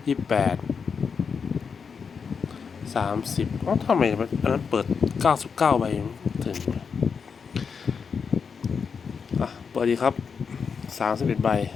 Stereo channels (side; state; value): right; quieter; 6.0 dB